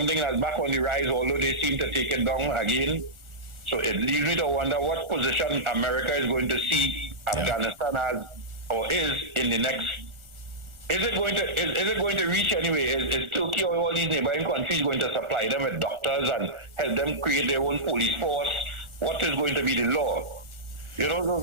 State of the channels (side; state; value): left; late; 1.3 ms